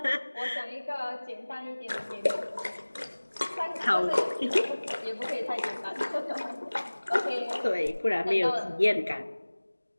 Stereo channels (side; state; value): both; inverted; correlation -1.00